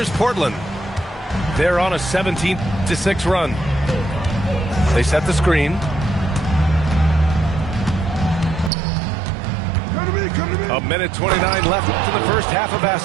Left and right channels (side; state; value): left; drops out; at 8.7 s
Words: Portland. They're on a 17-6 run. They set the screen. A minute 29 left to the first half of